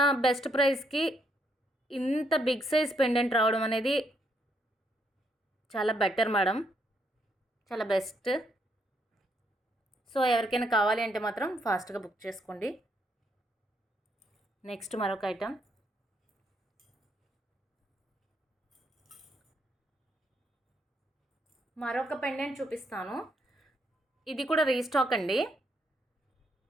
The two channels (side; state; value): both; normal; correlation 0.74